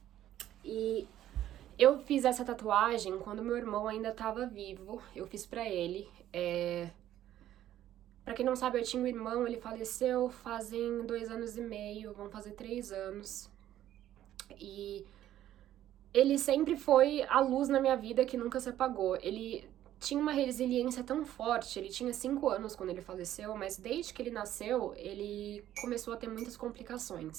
E eu fiz essa tatuagem quando meu irmão ainda tava vivo. Eu fiz pra ele. Pra quem não sabe, eu tinha um irmão, ele faleceu fazem 2 anos e meio, vão fazer 3 anos. E ele sempre foi a luz na minha vida que nunca se apagou. Ele tinha uma resiliência tão forte, ele tinha 5 anos quando ele faleceu, mas desde que ele nasceu, ele começou a ter muitas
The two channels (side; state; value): left; quieter; 12.4 dB